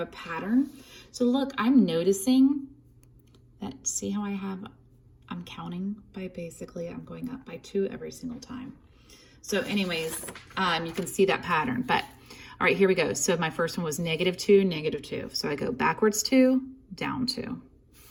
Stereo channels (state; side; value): identical; both; correlation 1.00